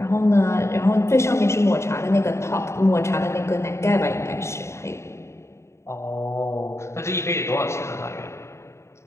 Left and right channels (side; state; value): right; late; 0.13 ms